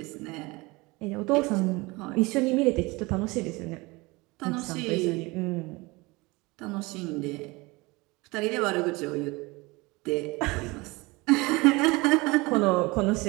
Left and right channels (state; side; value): quieter; left; 23.9 dB